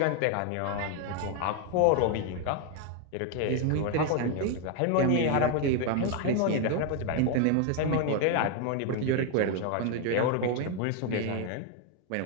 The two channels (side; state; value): both; different; correlation 0.00